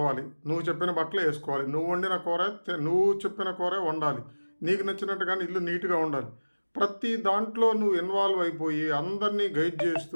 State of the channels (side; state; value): both; inverted; correlation -1.00